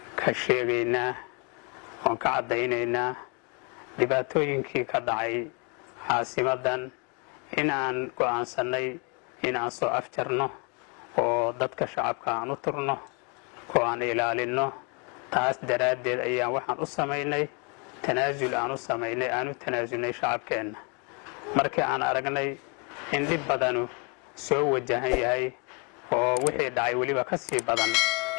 ka sheegaynaa oon ka caddaynaynaa dhibaatooyinkii ka dhacay caasimadan in aan go'aansannay in aan soo afjarno oo dadka shacabka aan u turno oo aan ilaalinno. taas daraaddeed ayaan waxaan u samaynay tanaasul aan u tanaasulnay shacabkeenna. markii aan aragnay in dhib badanu soo wajahan yahay oo wixii dhacay weliba ka sii badan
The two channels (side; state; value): right; quieter; 32.4 dB